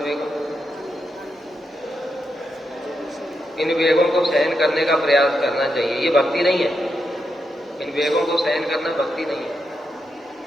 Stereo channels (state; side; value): normal; both; correlation 0.84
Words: वेगम। इन वेगों को सहन करने का प्रयास करना चाहिए। ये भक्ति नहीं है। इन वेगों को सहन करना भक्ति नहीं है।